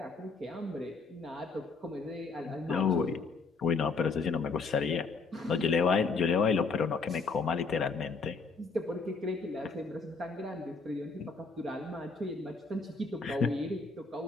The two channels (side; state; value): right; quieter; 4.4 dB